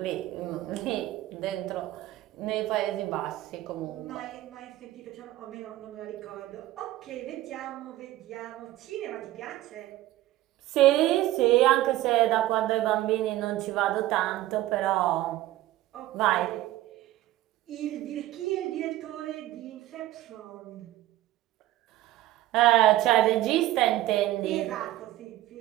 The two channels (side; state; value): left; quieter; 15.4 dB